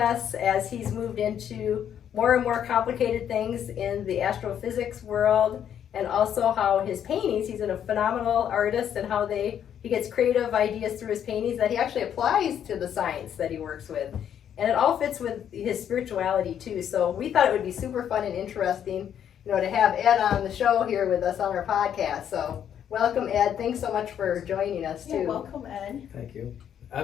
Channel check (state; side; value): quieter; right; 9.3 dB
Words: as he's moved into more and more complicated things in the astrophysics world, and also how his paintings, he's a phenomenal artist, and how he gets creative ideas through his paintings that he actually applies to the science that he works with. And it all fits with his spirituality too. So we thought it would be super fun and interesting, to have Ed on the show here with us on our podcast. So welcome, Ed. Thanks so much for joining us too. Yeah, welcome, Ed. Thank you.